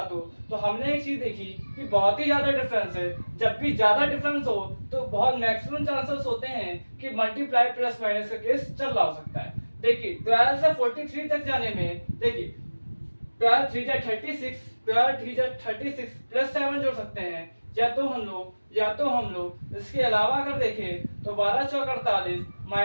हो, तो हमने एक चीज देखी कि बहुत ही ज्यादा डिफरेंस है। जब भी ज्यादा डिफरेंस हो तो बहुत मैक्सिमम चांसेस होते हैं कि मल्टीप्लाई प्लस माइनस का केस चल रहा हो सकता है। देखिए 12 से 43 तक जाने में, देखिए 12 3 जा 36, 12 3 जा 36 प्लस 7 जोड़ सकते हैं। या तो हम लोग इसके अलावा अगर देखें तो 12 चौक 48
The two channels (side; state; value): both; inverted; correlation -1.00